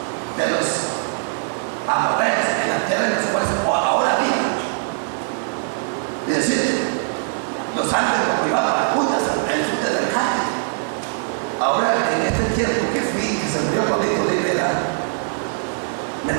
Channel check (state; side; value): silent; left; digital silence